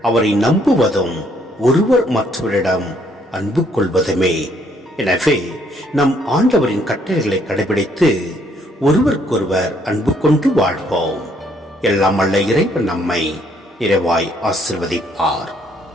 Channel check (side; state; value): both; normal; correlation 0.68